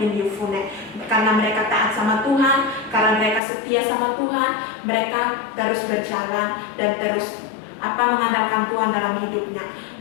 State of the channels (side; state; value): right; drops out; at 3.4 s